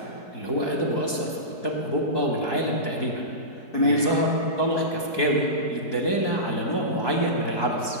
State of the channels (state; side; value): late; right; 4.7 ms